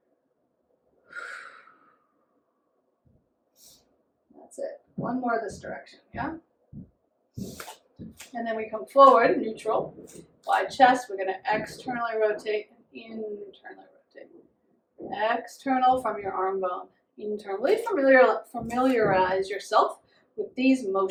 One more this direction, yeah? And then we come forward, neutral, wide chest. We're going to externally rotate and internally rotate. External from your arm bone. Internally familiarize yourself with these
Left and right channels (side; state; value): both; identical; correlation 1.00